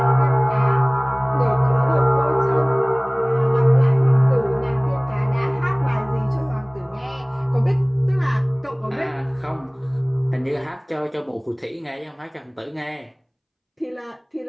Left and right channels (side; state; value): both; identical; correlation 1.00